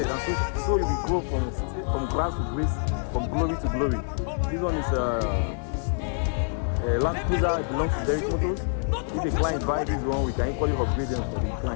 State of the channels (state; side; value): silent; right; 61 dB below the other